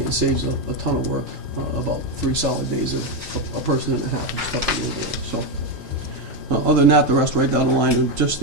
it saves a ton of work, about 3 solid days of a person and a half of stuff to go there. So, other than that, the rest right down the line, are just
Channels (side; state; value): both; normal; correlation 0.08